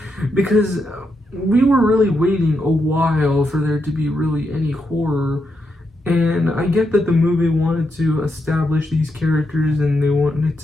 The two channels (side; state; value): both; normal; correlation 0.83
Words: Because we were really waiting a while for there to be really any horror. And I get that the movie wanted to establish these characters and they wanted